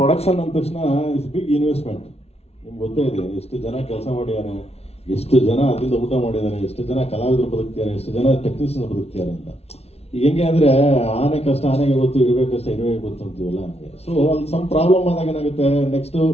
ಪ್ರೊಡಕ್ಷನ್ ಅಂದ ತಕ್ಷಣ ಇಸ್ ಬಿಗ್ ಇನ್ವೆಸ್ಟ್ಮೆಂಟ್. ನಿಮ್ಗೆ ಗೊತ್ತೇ ಇದೆ ಎಷ್ಟು ಜನ ಕೆಲಸ ಮಾಡಿದಾರೆ, ಎಷ್ಟು ಜನ ಅದರಿಂದ ಊಟ ಮಾಡಿದ್ದಾರೆ, ಎಷ್ಟು ಜನ ಕಲಾವಿದರು ಬದುಕ್ತಿದ್ದಾರೆ, ಎಷ್ಟು ಜನ ಟೆಕ್ನಿಷಿಯನ್ ಬದುಕ್ತಿದ್ದಾರೆ ಅಂತ. ಈಗ ಹೆಂಗೆ ಅಂದ್ರೆ ಆನೆ ಕಷ್ಟ ಆನೆಗೆ ಗೊತ್ತು, ಇರುವೆ ಕಷ್ಟ ಇರುವೆ ಗೊತ್ತು ಅಂತೀವಲ್ಲ ಹಂಗೆ. ಸೊ ಅಲ್ಲಿ ಸಮ್ ಪ್ರಾಬ್ಲಮ್ ಆದಾಗ ಏನಾಗುತ್ತೆ, ನೆಕ್ಸ್ಟ್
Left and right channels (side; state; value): right; late; 0.30 ms